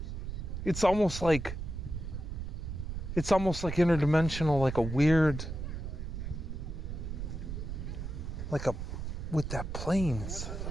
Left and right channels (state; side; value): noise; right; rumble, 5 dB below the sound